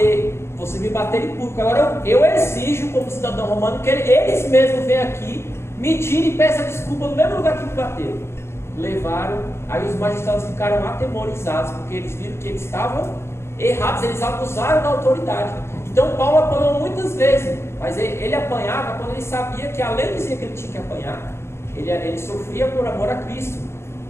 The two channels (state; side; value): late; right; 0.12 ms